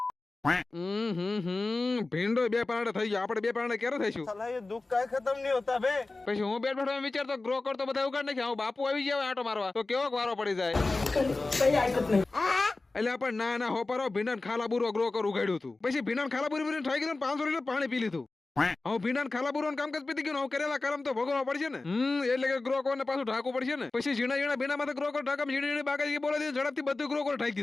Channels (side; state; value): right; quieter; 3.4 dB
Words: ભીંડો બે પારણે થઈ ગયો, આપણે બે પારણે ક્યારે થઈશું? साला ये दुख का खत्म नहीं होता बे। પછી હું બેઠ બેઠો વિચારતો ગ્રો કવર તો બધા ઉગાડ નાખ્યા, હું બાપુ આવી જાય આટો મારવા તો કેવો વારો પડી જાય. એટલે આપણે ના ના હોપારો ભીંડા ખાલા બુરો ગ્રો કર ઉગાડ્યું હતું. પછી ભીંડા ખાલા બુરી બુરી થઈ ગયું, 500 લીટર પાણી પી લીધું. હું ભીંડા ખાલા બુરો કામકાજ પીતી ગયું, હું કરેલા કરમ તો ભોગવવા પડશે ને. એટલે કે ગ્રો કવર ને પાછું ઢાંકવું પડશે ને. પછી ઝીણા ઝીણા ભીંડા માં ગ્રો કવર ઢાંકમ ઝીણી ઝીણી બાકાજી બોલે દીધું, ઝડપથી બધું ગ્રો કવર ઢાંકી